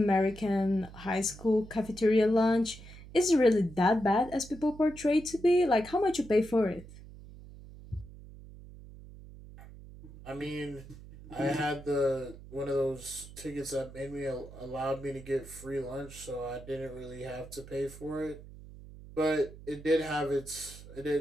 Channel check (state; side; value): noise; right; hum, 17 dB below the sound